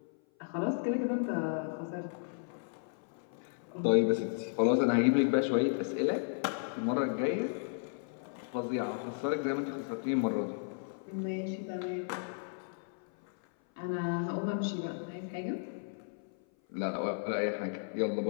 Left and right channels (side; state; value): right; silent; 55 dB below the other